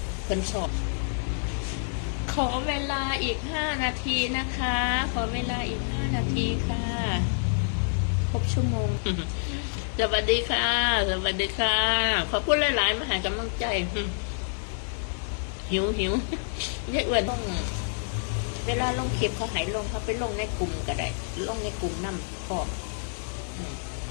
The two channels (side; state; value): right; silent; 56 dB below the other